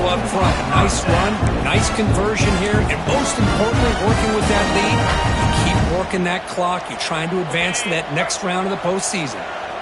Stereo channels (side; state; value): both; identical; correlation 1.00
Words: up front. Nice run, nice conversion here, and most importantly, working with that lead, you keep working that clock. You're trying to advance to that next round of the postseason.